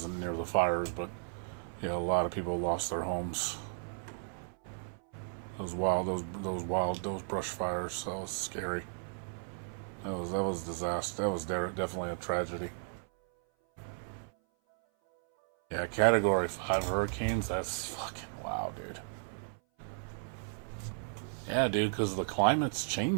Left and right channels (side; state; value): left; silent; 55 dB below the other